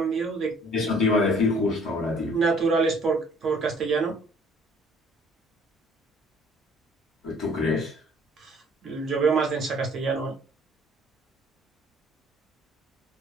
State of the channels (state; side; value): normal; both; correlation 0.57